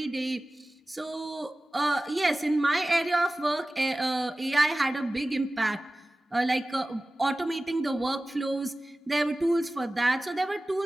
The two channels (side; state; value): both; normal; correlation 0.97